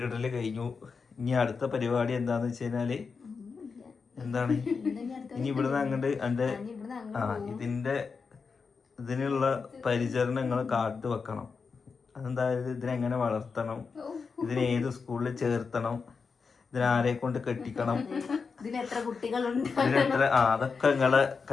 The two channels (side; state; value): right; quieter; 5.2 dB